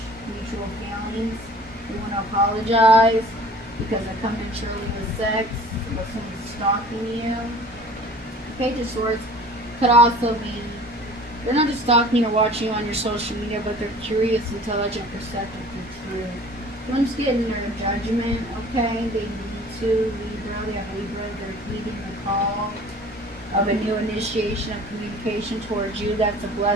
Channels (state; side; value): normal; both; correlation 0.46